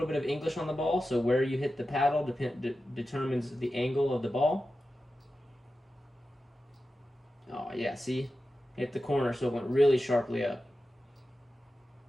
bit of English on the ball, so where you hit the paddle determines the angle of the ball. Oh yeah, see? Hit the corner, so it went really sharply up.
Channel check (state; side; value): normal; both; correlation 0.92